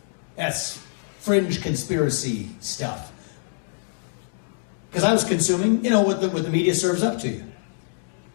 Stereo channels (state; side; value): silent; right; digital silence